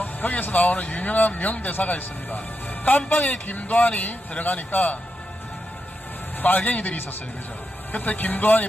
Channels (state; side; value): normal; both; correlation 0.86